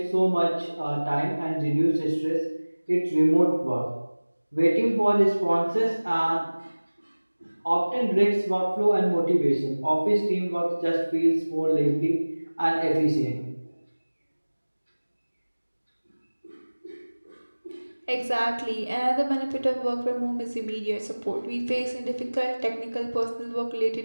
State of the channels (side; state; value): both; inverted; correlation -1.00